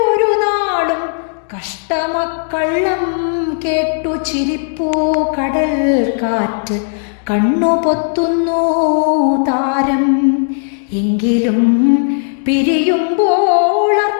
ഒരു നാളും കഷ്ടമക്കള്ളം കേട്ടു ചിരിപ്പൂ കടൽ കാറ്റ് കണ്ണു പൊത്തുന്നു താരം എങ്കിലും പിരിയുമ്പോൾ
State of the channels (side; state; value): right; silent; digital silence